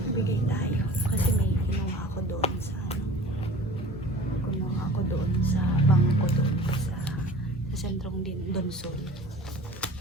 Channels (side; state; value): both; normal; correlation 0.42